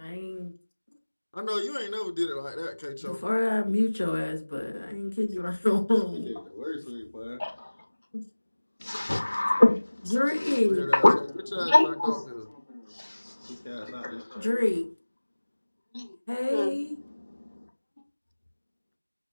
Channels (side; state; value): both; inverted; correlation -1.00